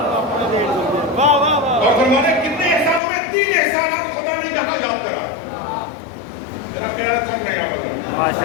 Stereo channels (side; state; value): right; drops out; at 3.0 s